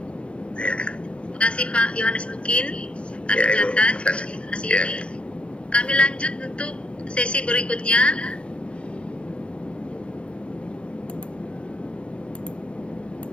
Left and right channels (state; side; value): late; right; 0.058 ms